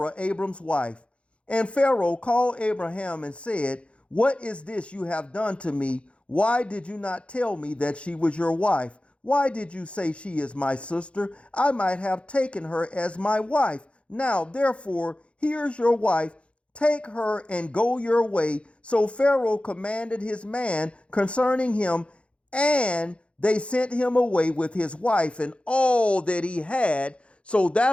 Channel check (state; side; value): late; right; 0.060 ms